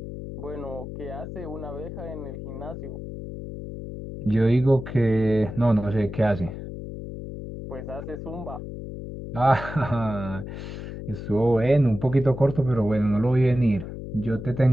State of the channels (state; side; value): noise; left; hum, 9 dB below the sound